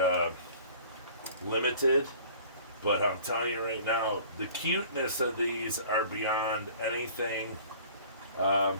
limited. But I'm telling you right now, the cuteness of these are beyond anything I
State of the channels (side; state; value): both; inverted; correlation -0.48